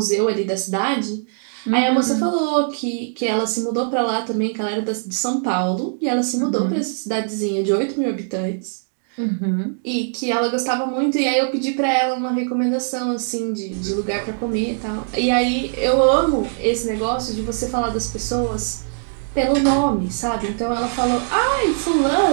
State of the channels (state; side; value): silent; left; digital silence